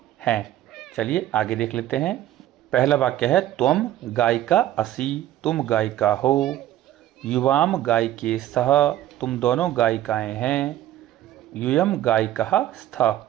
हैं। चलिए आगे देख लेते हैं। पहला वाक्य है त्वम गायिका असि, तुम गायिका हो। युवाम गायिके स्तः, तुम दोनों गायिकाएं हैं। यूयम गायिकः स्तः,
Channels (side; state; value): left; quieter; 13.2 dB